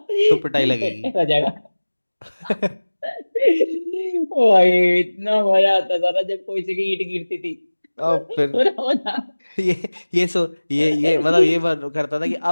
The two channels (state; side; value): inverted; both; correlation -1.00